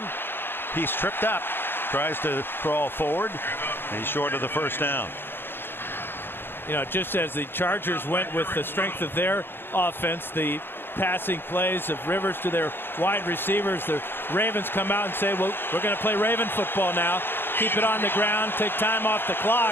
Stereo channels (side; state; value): right; late; 0.10 ms